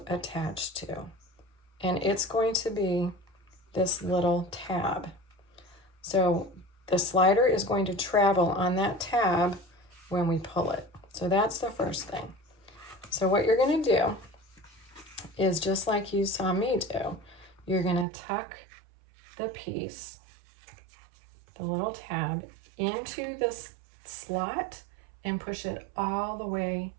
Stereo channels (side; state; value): left; drops out; at 18.1 s